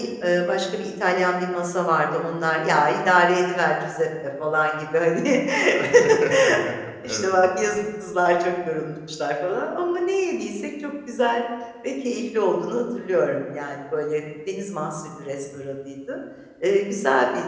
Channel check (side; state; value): both; identical; correlation 1.00